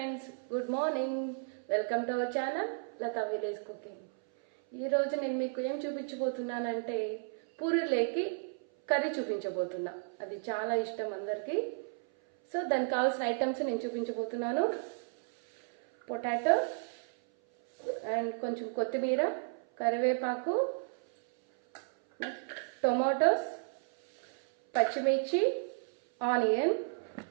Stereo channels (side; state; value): left; silent; 56 dB below the other